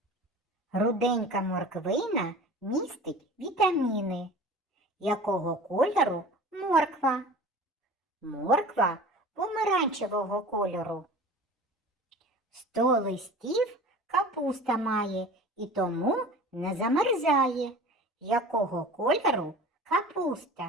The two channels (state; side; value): normal; both; correlation 0.40